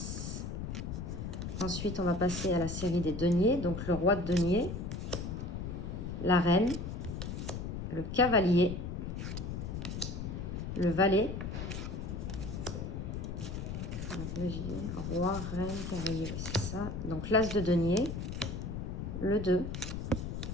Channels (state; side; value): noise; left; rumble, 5 dB below the sound